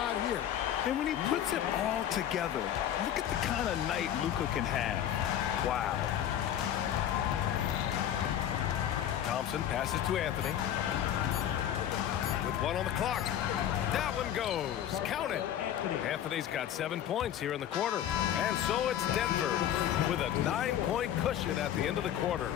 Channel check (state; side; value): quieter; right; 10.6 dB